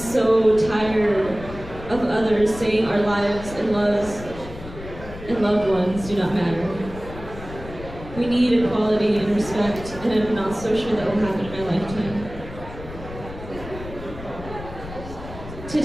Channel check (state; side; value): noise; left; rumble, 13 dB below the sound